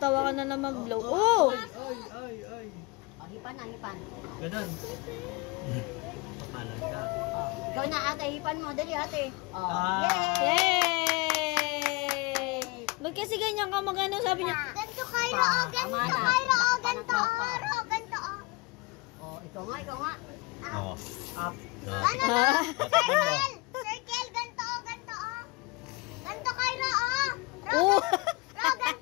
ka na naman blow. Oh! Ay. O, hipan. Ganun. Pakalan ka. Ikaw na ate, hipan mo. Dali ate. Ah. Yay! Ba't kasi ganyan ka magano? Sabi niya. Ganto, Cairo. Oh, ganto, Cairo. Oh, ganto. Oh, ganto. Oh, ikaw nga. Oo. Up. Circle. Circle. Ganto, oh, ganto. Oh. Ganto, Cairo. Oh. Oh! Ro,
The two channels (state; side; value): quieter; right; 24.5 dB